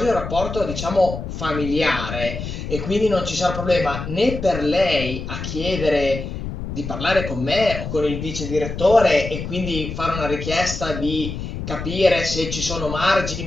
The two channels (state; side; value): noise; left; rumble, 7 dB below the sound